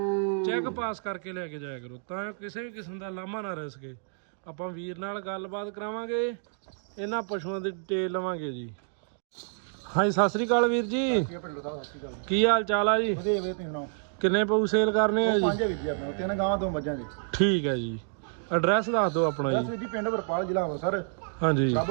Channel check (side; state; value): left; silent; digital silence